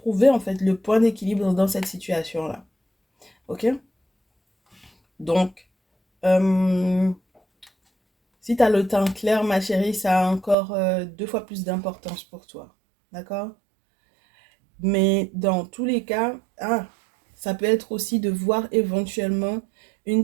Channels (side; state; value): left; drops out; at 10.6 s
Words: en fait le point d'équilibre dans cette situation-là. Ok? Donc, euh, si tu as le temps clair, ma chérie, ça a encore 2 fois plus d'importance pour toi. D'accord? Mais dans tous les cas, ça peut être aussi de voir éventuellement